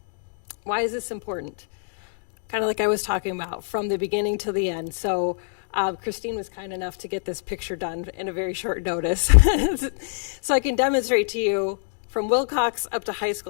Why is this important? Kind of like I was talking about, from the beginning to the end. So Christine was kind enough to get this picture done in a very short notice. So I can demonstrate to you from Wilcox up to high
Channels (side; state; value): right; silent; 62 dB below the other